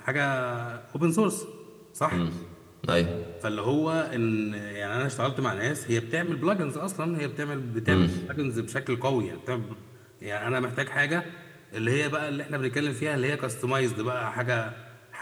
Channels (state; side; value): identical; both; correlation 1.00